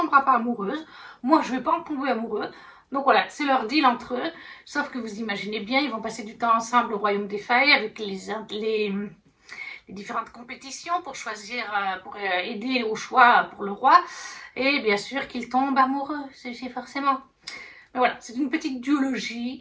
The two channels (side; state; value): both; identical; correlation 1.00